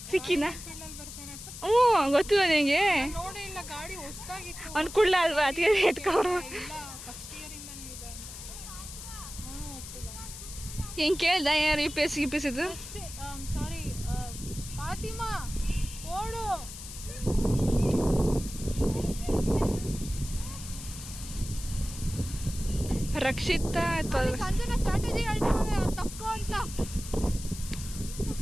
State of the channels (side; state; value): left; noise; hiss, 12 dB below the sound